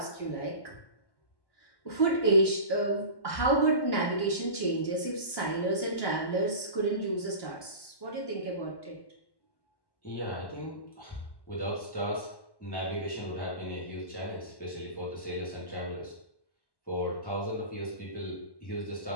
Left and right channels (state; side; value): late; right; 1.1 ms